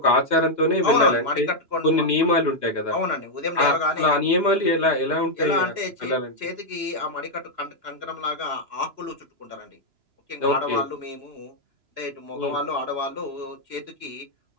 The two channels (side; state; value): left; late; 2.9 ms